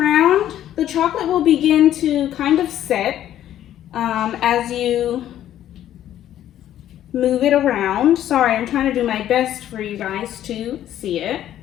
The chocolate will begin to kind of set as you move it around. Sorry, I'm trying to do my best for you guys to see it.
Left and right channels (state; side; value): quieter; right; 11.8 dB